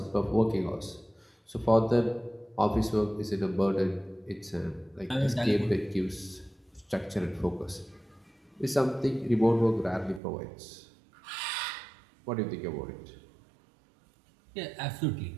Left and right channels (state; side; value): drops out; left; at 10.2 s